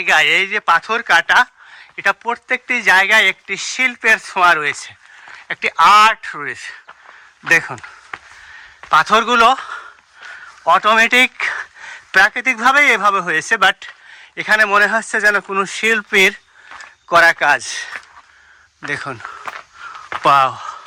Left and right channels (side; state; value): both; identical; correlation 1.00